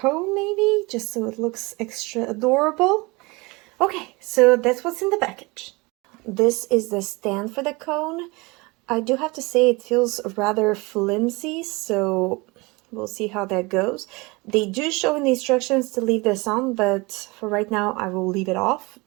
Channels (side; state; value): left; quieter; 25.2 dB